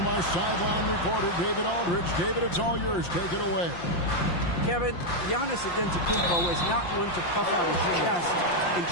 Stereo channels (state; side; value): late; right; 5.8 ms